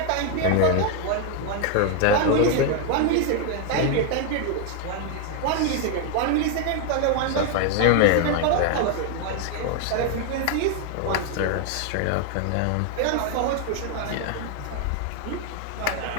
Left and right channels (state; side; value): different; both; correlation 0.01